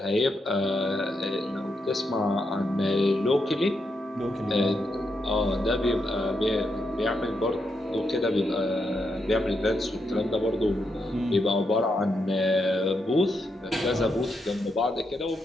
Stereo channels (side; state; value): both; normal; correlation 0.82